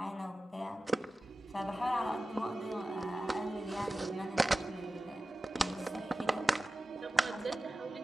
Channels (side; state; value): both; normal; correlation 0.95